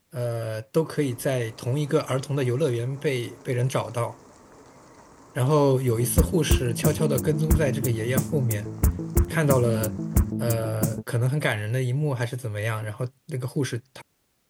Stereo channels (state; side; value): identical; both; correlation 1.00